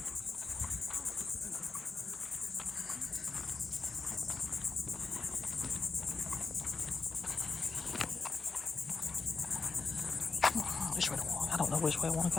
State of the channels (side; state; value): right; quieter; 4.4 dB